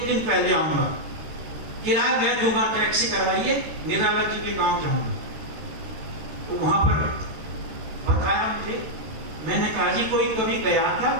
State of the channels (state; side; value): late; left; 13 ms